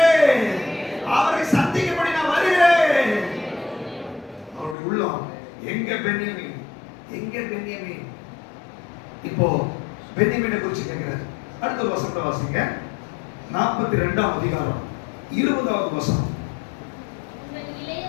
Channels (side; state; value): right; drops out; at 4.8 s